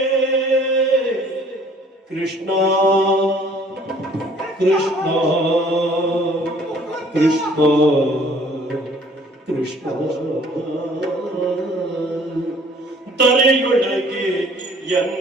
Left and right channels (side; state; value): both; normal; correlation 0.56